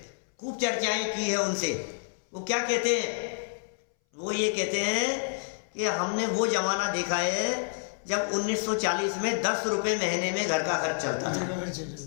खूब चर्चाएं की है उनसे। वो क्या कहते हैं? वो ये कहते हैं कि हमने वो जमाना देखा है जब 1940 में 10 रुपये महीने में घर का खर्च चलता था।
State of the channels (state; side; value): silent; right; 59 dB below the other